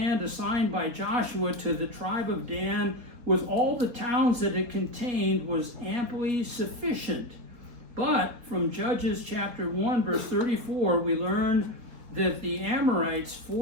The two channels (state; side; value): late; left; 4.2 ms